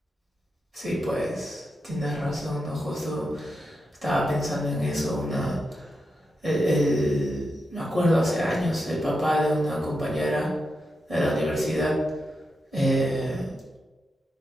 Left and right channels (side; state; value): both; normal; correlation 0.86